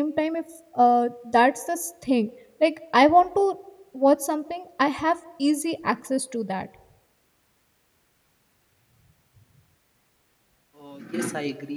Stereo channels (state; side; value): identical; both; correlation 1.00